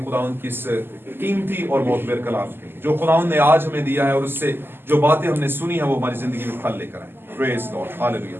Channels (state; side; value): late; left; 0.10 ms